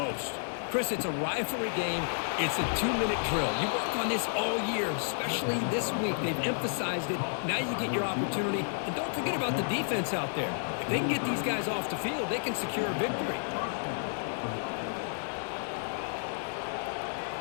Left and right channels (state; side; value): silent; right; 57 dB below the other